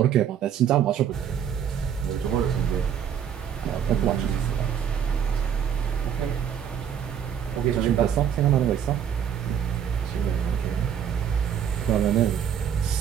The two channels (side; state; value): left; quieter; 8.7 dB